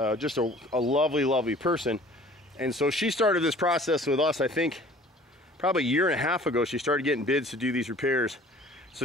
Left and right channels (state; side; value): normal; both; correlation 0.49